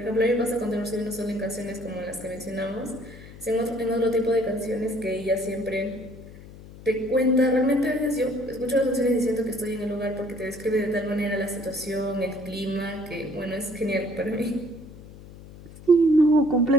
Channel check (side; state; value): left; noise; hum, 17 dB below the sound